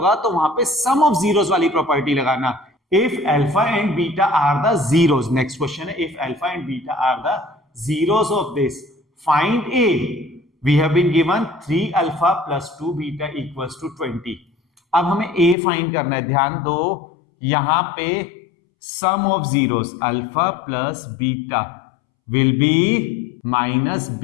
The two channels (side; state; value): right; drops out; at 15.6 s